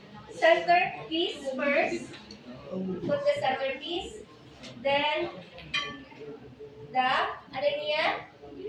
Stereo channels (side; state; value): both; identical; correlation 1.00